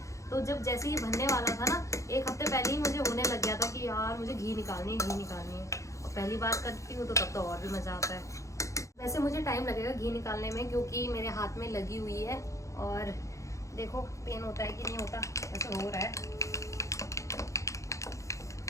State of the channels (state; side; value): late; right; 0.15 ms